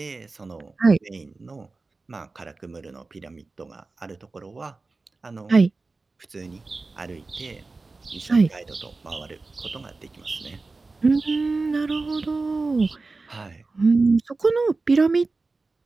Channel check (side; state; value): left; quieter; 3.7 dB